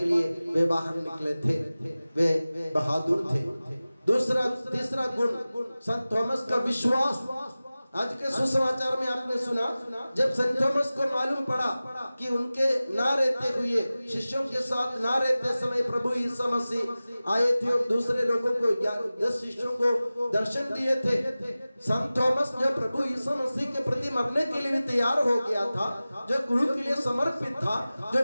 लिए वे बाहर निकले थे। वे बहादुर थे। तीसरा गुण संत थॉमस का विश्वास। आज के सुसमाचार में आपने सुना, जब संत थॉमस को मालूम पड़ा कि उनके ना रहते हुए, शिष्यों के साथ ना रहते समय प्रभु यीशु मसीह आए थे और दूसरे लोगों को 10 शिष्यों को दर्शन दिए थे। संत थॉमस जो प्रभु यीशु मसीह के प्रति मरने के लिए तैयार हो गया था, जो गुरु के लिए समर्पित था, जो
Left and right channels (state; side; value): inverted; both; correlation -0.97